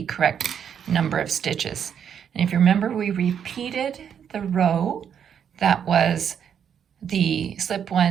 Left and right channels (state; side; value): quieter; left; 8.2 dB